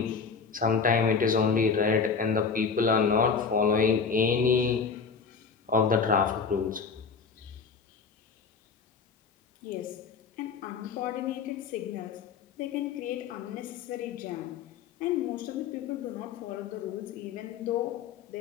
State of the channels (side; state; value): right; quieter; 5.4 dB